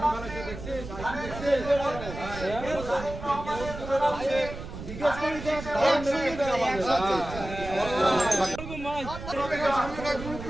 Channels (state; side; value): noise; right; rumble, 10 dB below the sound